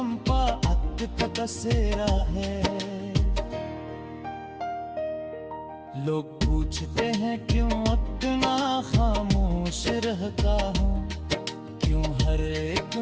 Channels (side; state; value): both; identical; correlation 1.00